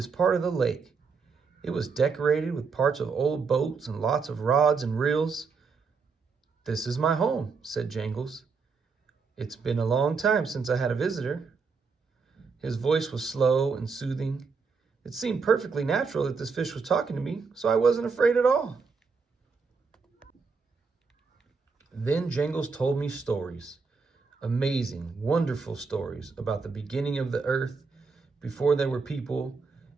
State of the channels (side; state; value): left; quieter; 4.9 dB